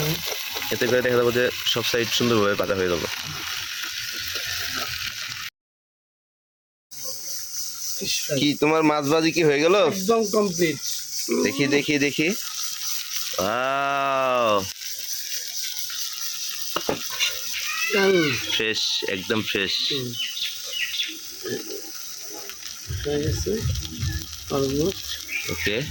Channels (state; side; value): identical; both; correlation 1.00